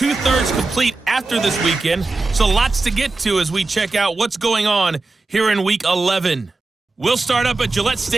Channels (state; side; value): quieter; left; 3.5 dB